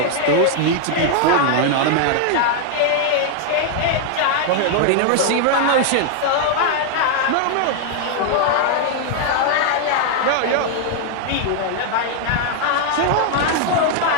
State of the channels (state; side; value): different; both; correlation 0.00